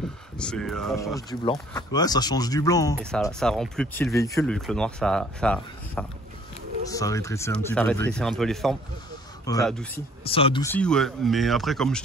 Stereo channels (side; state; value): both; normal; correlation 0.57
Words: Ça change du blanc. Ouais, ça change du blanc, hein. Et ça rend plus petit le véhicule, vu que le noir ça rétrécit un petit peu. Ça rétrécit un peu les formes. Ouais. Ça adoucit. Ça adoucit, ouais. Mais après, comme je